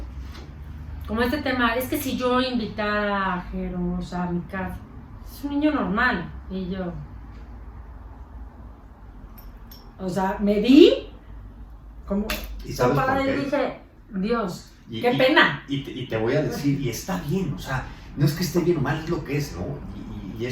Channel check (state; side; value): identical; both; correlation 1.00